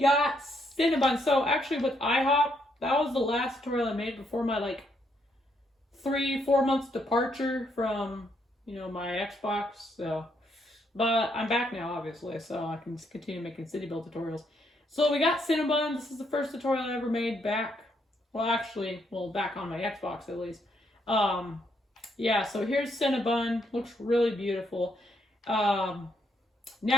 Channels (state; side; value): normal; both; correlation 0.74